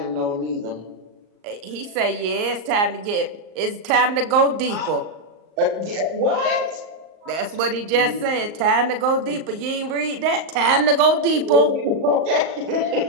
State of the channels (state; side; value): late; left; 38 ms